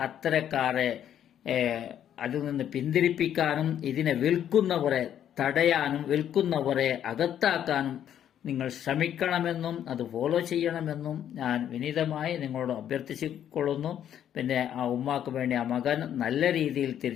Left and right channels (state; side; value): quieter; right; 10.1 dB